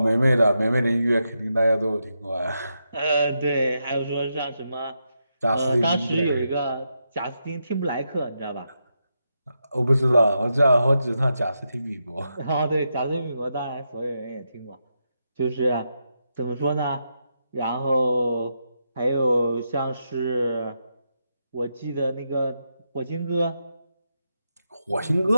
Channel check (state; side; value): inverted; both; correlation -0.84